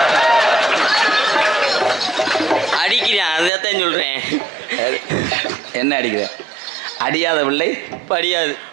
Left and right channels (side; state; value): left; drops out; at 3.5 s